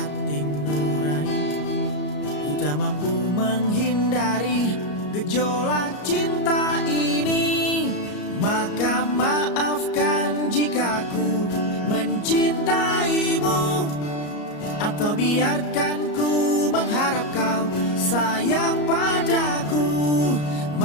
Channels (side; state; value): right; late; 34 ms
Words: nurani. Ku tak mampu menghindari gejolak cinta ini. Maka maafkan jika ku mencintaimu, atau biarkan ku mengharap kau sayang padaku.